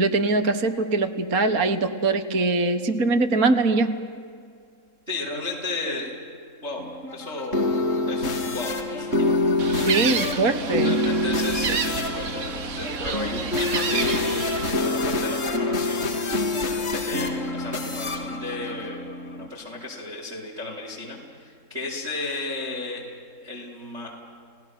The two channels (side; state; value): left; late; 3.7 ms